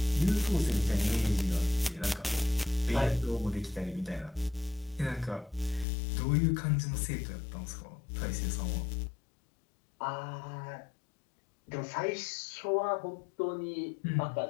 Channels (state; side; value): drops out; right; at 5.9 s